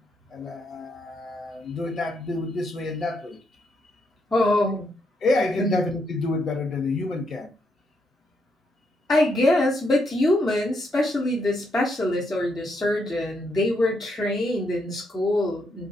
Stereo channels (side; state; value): both; normal; correlation 0.78